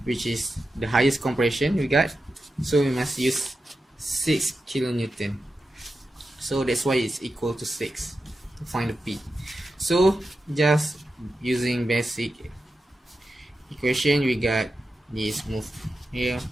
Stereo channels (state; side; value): normal; both; correlation 0.90